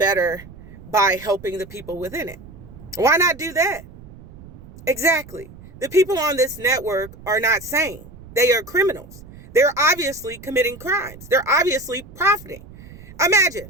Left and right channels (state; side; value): noise; right; rumble, 19 dB below the sound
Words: by helping the people within it. Why not do that? Exactly. The people on this network are not sane. They are criminals. They're obviously committing crimes. They're obviously profiting.